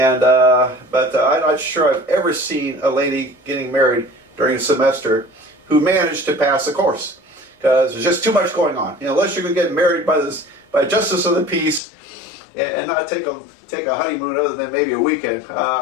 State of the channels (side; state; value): right; drops out; at 11.8 s